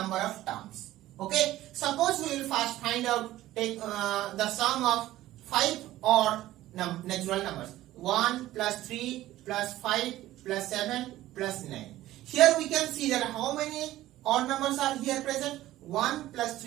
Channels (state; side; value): quieter; left; 15.1 dB